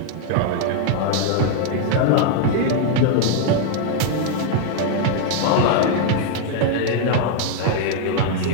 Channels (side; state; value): both; different; correlation 0.00